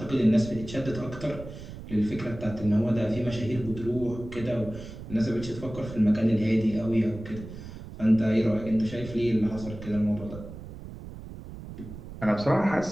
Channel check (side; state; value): right; noise; rumble, 12 dB below the sound